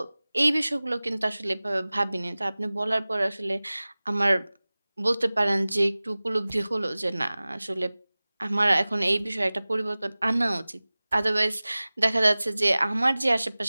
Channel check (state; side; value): inverted; both; correlation -0.99